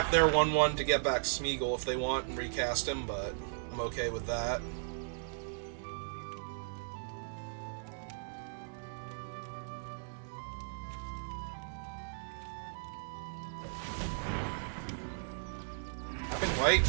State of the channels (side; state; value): left; silent; digital silence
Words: their 1-1 to get back Smeagol if they want and recast him, but I'm okay with that. Tapping white,